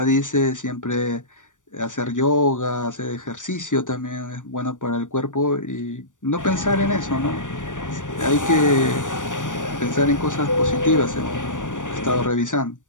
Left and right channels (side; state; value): right; late; 0.87 ms